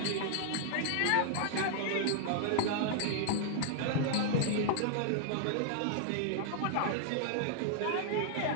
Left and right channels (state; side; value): different; both; correlation -0.01